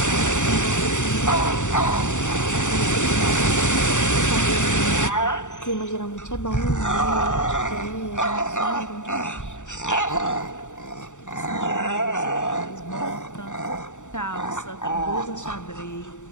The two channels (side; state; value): right; late; 0.85 ms